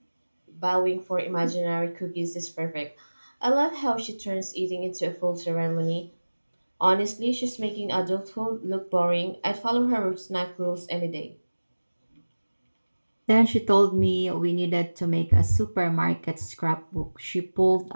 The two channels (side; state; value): both; inverted; correlation -1.00